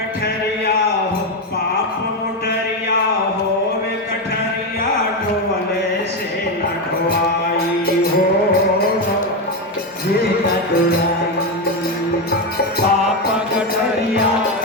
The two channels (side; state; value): both; normal; correlation 0.10